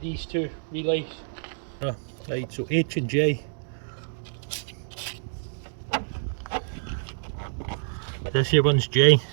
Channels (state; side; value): silent; left; digital silence